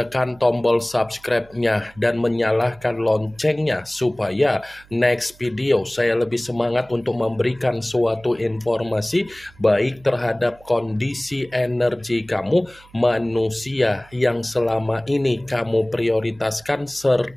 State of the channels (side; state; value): right; noise; hum, 26 dB below the sound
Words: tombol subscribe-nya dan menyalakan loncengnya supaya next video saya lebih semangat untuk memberikan suatu informasi baik terhadap kondisi energi kamu, manusia yang selama ini kamu prioritaskan,